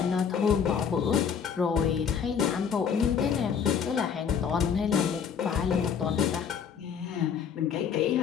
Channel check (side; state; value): right; quieter; 7.1 dB